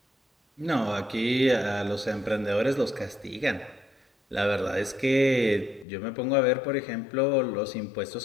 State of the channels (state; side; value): drops out; right; at 5.9 s